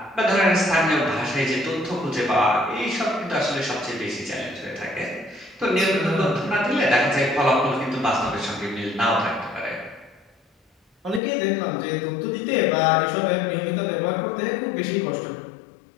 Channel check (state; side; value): drops out; right; at 11.2 s